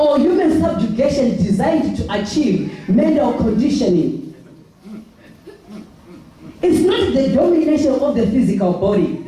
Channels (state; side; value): identical; both; correlation 1.00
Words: human subjugation designed to achieve mental conditioning. It's not the domination of the physical body.